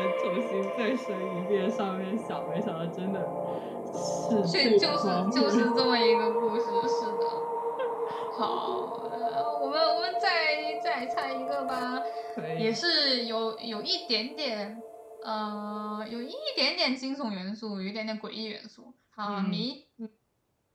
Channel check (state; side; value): identical; both; correlation 1.00